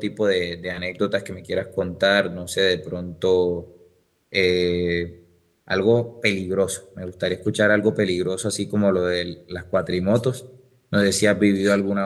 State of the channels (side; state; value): both; identical; correlation 1.00